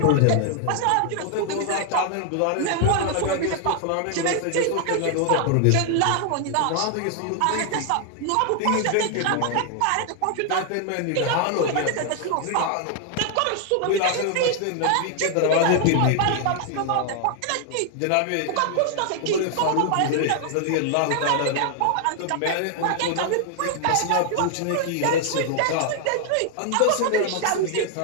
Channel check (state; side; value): different; both; correlation 0.00